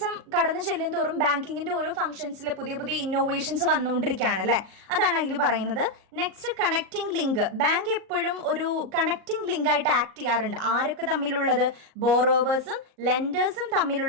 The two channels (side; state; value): left; late; 38 ms